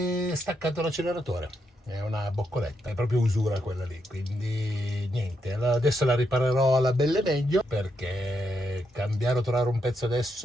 è staccato l'acceleratore. È una boccoletta, è proprio usura quella lì, quindi niente, adesso la riparerò alla belle meglio, perché cambiare o trovare un pezzo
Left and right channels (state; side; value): normal; both; correlation 0.80